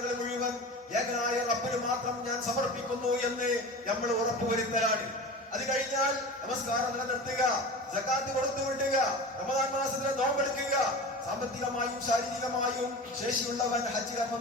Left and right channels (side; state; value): both; normal; correlation 0.32